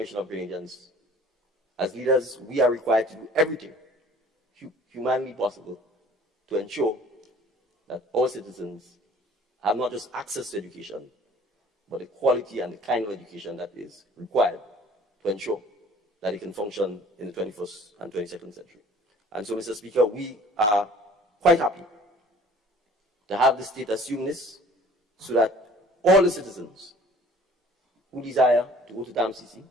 of Grenadians, as leaders, we are required to do everything humanly possible to ensure that all citizens have not just access to education, but the quality and the kind of education that is required to ensure that it can function in the 21st and 22nd century. And so, Mr. Speaker, we are quite happy to have the state assume this, so that all the citizens who desire to go to the MCC,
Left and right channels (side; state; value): both; normal; correlation 0.51